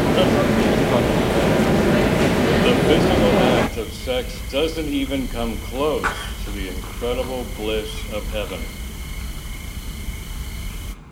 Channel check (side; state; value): both; identical; correlation 1.00